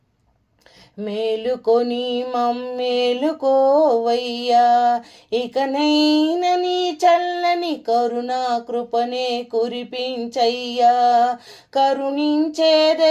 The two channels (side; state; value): both; identical; correlation 1.00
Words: మేలుకొని మమ్మేలుకోవయ్యా, ఇకనైన నీ చల్లని కరుణా కృపనే కురిపించయ్యా. కరుణించే